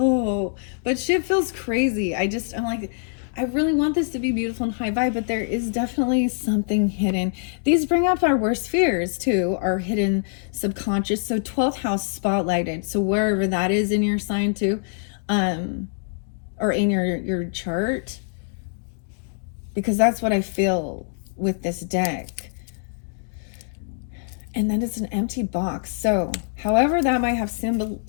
but shit feels crazy. I'm like, I really want this to be beautiful and high vibe, but there is definitely something hidden. These bring up our worst fears too, our hidden subconscious. So 12th house spotlighted. So wherever that is in your sign too, or in your chart, because that's what I feel with this deck. And then it's an empty box. So however that might have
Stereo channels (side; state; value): right; silent; digital silence